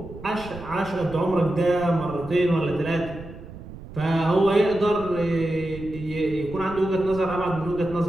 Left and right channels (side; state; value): right; noise; rumble, 14 dB below the sound